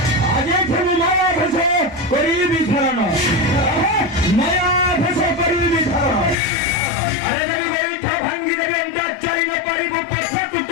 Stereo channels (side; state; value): right; drops out; at 6.4 s